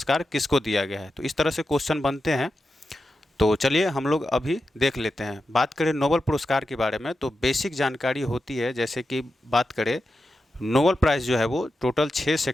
किसको दिया गया है, तो इस तरह से क्वेश्चन बनते हैं। तो चलिए हम लोग अभी देख लेते हैं। बात करें नोबेल पुरस्कार के बारे में तो बेसिक जानकारी होती है। जैसे कि बात करें, नोबेल प्राइज़ जो है वो टोटल 6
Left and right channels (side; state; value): both; normal; correlation 0.90